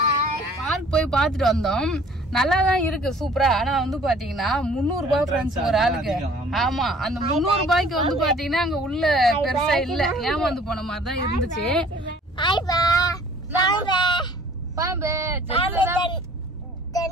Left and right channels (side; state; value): both; normal; correlation 0.53